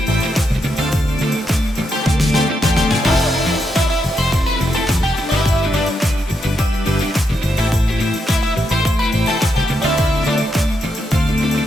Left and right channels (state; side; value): normal; both; correlation 0.82